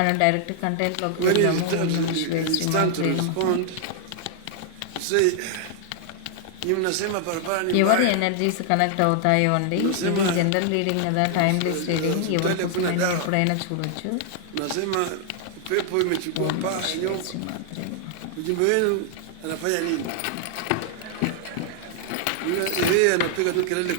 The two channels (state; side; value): different; both; correlation 0.00